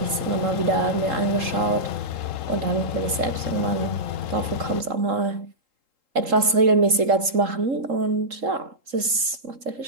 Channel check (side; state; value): left; late; 3.7 ms